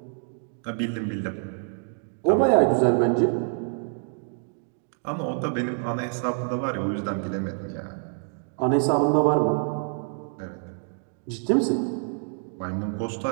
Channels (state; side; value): silent; left; 61 dB below the other